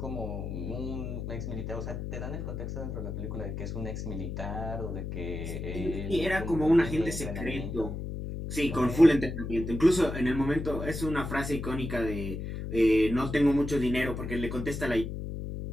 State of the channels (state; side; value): noise; left; hum, 5 dB below the sound